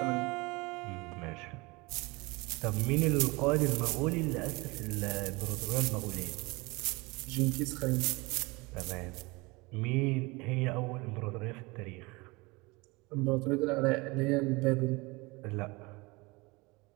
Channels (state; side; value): quieter; left; 24.8 dB